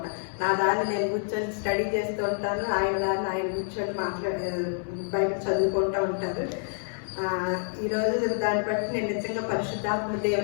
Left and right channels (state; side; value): silent; right; digital silence